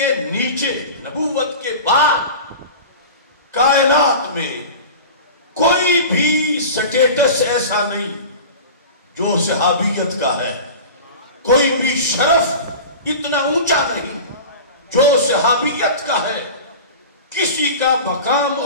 نیچے، نبوت کے بعد کائنات میں کوئی بھی سٹیٹس ایسا نہیں جو صحابیت کا ہے. کوئی بھی شرف اتنا اونچا نہیں جو صحابیت کا ہے. کسی کا مقام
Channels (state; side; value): inverted; both; correlation -0.34